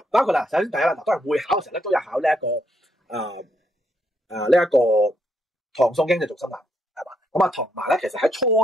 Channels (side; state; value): both; normal; correlation 0.76